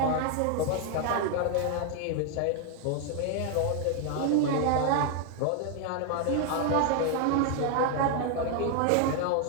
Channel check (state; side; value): different; both; correlation 0.00